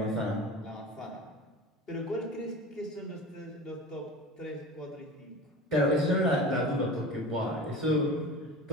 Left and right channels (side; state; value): both; normal; correlation 0.34